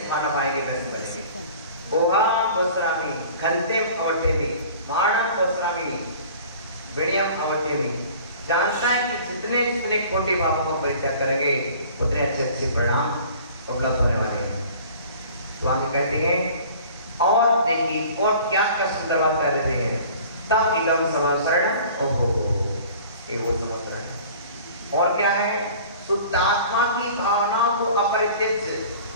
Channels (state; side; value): inverted; both; correlation -0.47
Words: खाना पाएंगे वैसे बनेंगे। बोहा बोसरामी घंटे अवठेमी माणम बोसरामी विड़ियम अवठेमी, जानता है कि जितने जितने खोटे पापों को परित्याग करेंगे उतने अच्छे अच्छे परिणाम उपलब्ध होने वाले हैं। तो आगे कहते हैं और देखिए और क्या क्या सुंदर बात कर रहे हैं। तब इलम समाशरण ओहो ये वो समाशरण और क्या है? शुद्ध आत्मा की भावना को अपरित्यज्य,